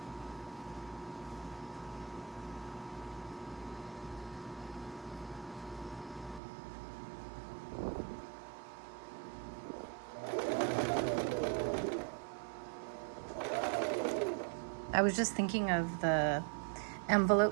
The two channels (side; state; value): left; drops out; at 6.4 s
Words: I was just thinking of the